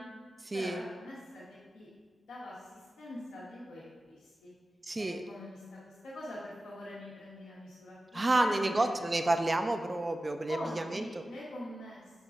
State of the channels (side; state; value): both; normal; correlation 0.95